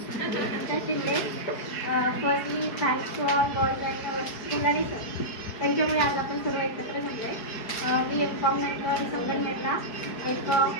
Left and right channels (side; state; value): right; late; 4.7 ms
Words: Shinde, firstly thanks to all boys आणि सर, त्यांच्यामुळे आज आपण सर्व एकत्र जमले. मी एम.कॉम नंतर संगमनेरला एक